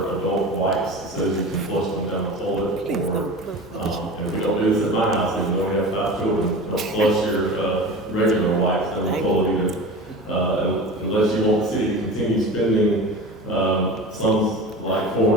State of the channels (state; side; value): normal; both; correlation 0.34